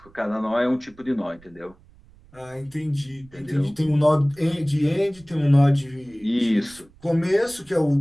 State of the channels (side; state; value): right; noise; rumble, 26 dB below the sound